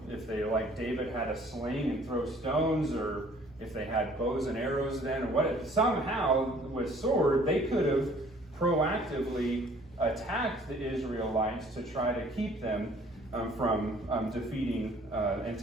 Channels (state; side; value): normal; both; correlation 0.56